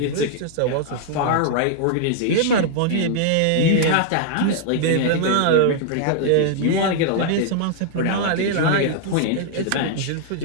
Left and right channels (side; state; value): both; different; correlation -0.01